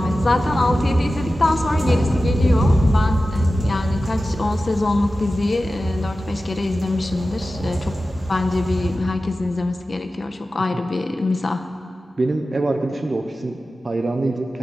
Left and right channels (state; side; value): normal; both; correlation 0.94